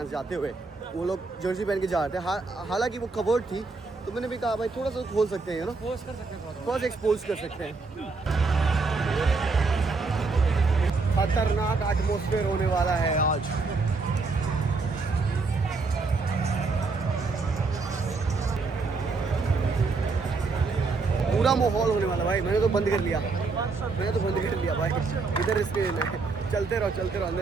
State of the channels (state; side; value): quieter; left; 4.1 dB